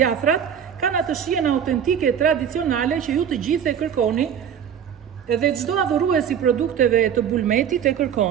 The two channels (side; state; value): left; quieter; 8.5 dB